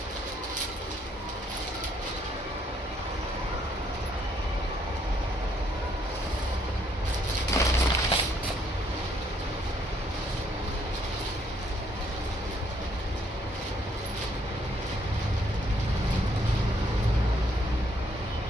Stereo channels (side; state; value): both; normal; correlation 0.69